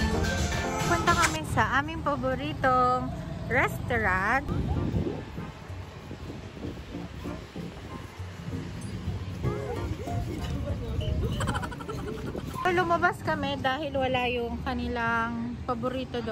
Punta kami sa aming paboritong restaurant. Lumabas kami dahil wala yung kanilang paborito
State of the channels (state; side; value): identical; both; correlation 1.00